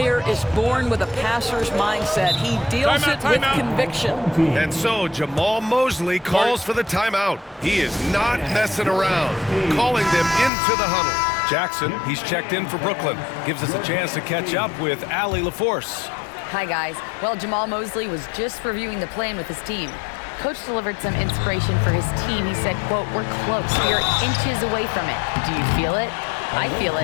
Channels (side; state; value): right; drops out; at 10.5 s